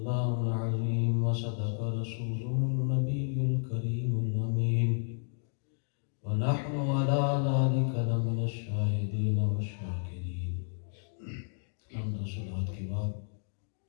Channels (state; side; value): silent; right; 57 dB below the other